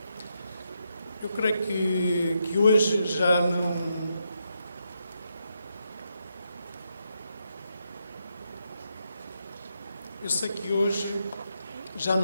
Eu creio que hoje já não... Eu sei que hoje já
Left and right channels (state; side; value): inverted; both; correlation -0.82